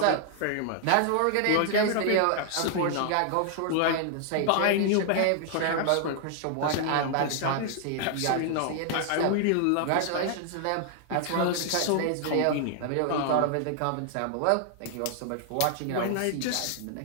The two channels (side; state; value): both; different; correlation 0.00